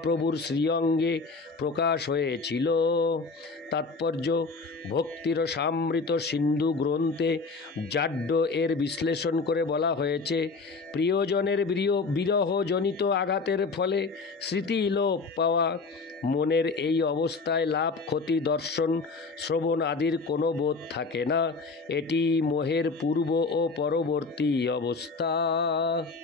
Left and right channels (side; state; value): right; quieter; 4.1 dB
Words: শ্রীঅঙ্গে প্রকাশ হয়েছিল। তাৎপর্য: ভক্তিরসামৃত সিন্ধু গ্রন্থে জাড্য এর বিশ্লেষণ করে বলা হয়েছে, প্রিয়জনের বিরহজনিত আঘাতের ফলে স্মৃতি লোপ পাওয়া, মনের এই অবস্থায় লাভ, ক্ষতি, দর্শন, শ্রবণ আদির কোনো বোধ থাকে না। এটি মোহের পূর্ব ও পরবর্তী অবস্থা।